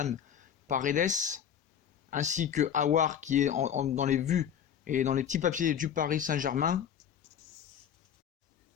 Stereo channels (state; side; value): quieter; right; 8.8 dB